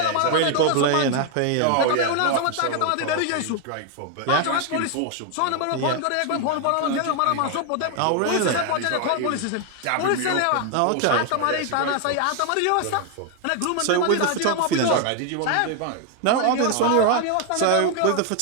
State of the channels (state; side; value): different; both; correlation 0.01